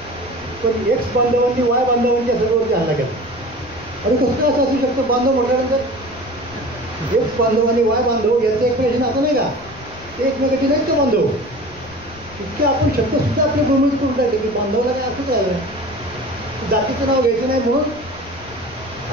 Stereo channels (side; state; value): left; noise; rumble, 20 dB below the sound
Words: पण एक्स बांधवांनी वाय बांधवांच्या सर्ववरती हल्ला केला. आणि कसं काय असं असू शकतं? बांधव म्हटल्यानंतर एक्स बांधव आणि वाय बांधव यांचं एकमेकांशी नातं नाही का? ते एकमेकांचे नाहीत का बांधव? इतके आपण शब्दसुद्धा आपले भूमित करून टाकले की बांधवाला काय असंच आहे, जातीचं नाव घ्यायचं नाही म्हणून